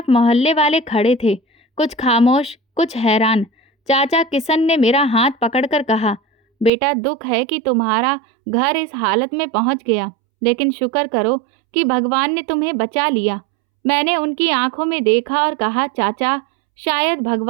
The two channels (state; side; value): drops out; left; at 6.7 s